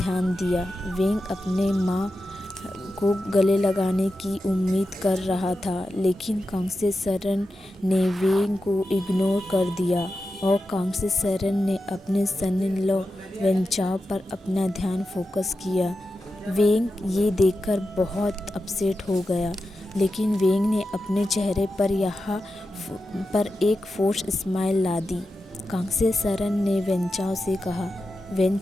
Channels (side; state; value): both; normal; correlation 0.91